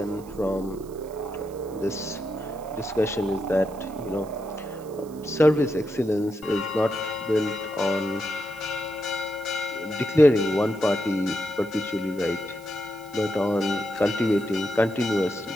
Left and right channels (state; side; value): noise; right; hiss, 24 dB below the sound